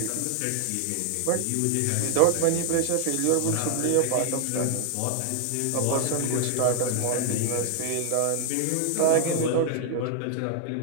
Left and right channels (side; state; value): both; different; correlation 0.00